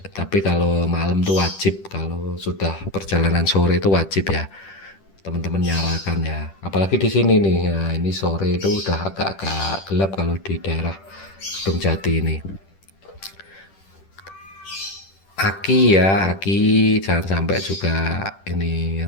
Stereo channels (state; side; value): late; right; 10 ms